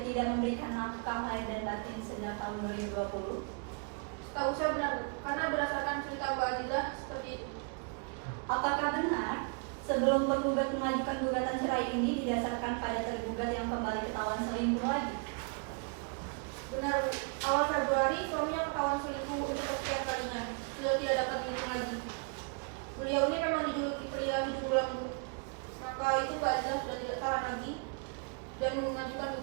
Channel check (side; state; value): left; quieter; 37.0 dB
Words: tidak memberikan nafkah lahir dan batin sejak tahun 2020? Tahu saya benar, Bu, karena berdasarkan cerita Mbak Azizah seperti itu. Apakah benar sebelum tergugat mengajukan gugatan cerai ini didasarkan pada tergugat yang kembali ketahuan selingkuh lagi? Benar, Bu. Awal Februari suaminya ketahuan selingkuh untuk kesekian kalinya. Sudah tidak dapat dihitung lagi. Beliau ini memang dijuluki pria hidung belang, Bu. Maka itu Mbak Azizah sudah tidak tahan lagi dan mengajukan